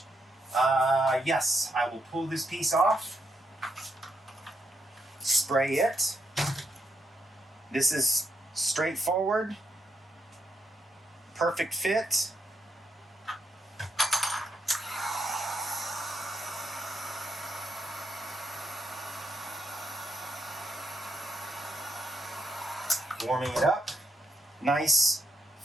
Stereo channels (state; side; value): normal; both; correlation 0.80